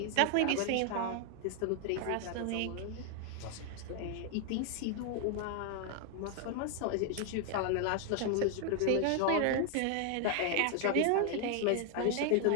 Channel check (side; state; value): both; different; correlation 0.00